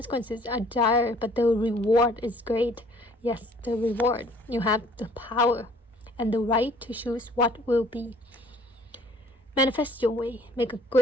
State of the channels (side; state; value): both; normal; correlation 0.56